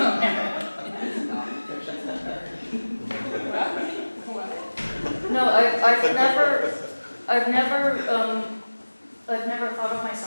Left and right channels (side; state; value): both; inverted; correlation -1.00